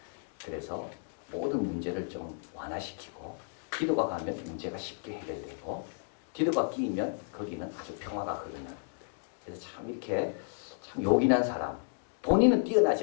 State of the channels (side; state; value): right; silent; digital silence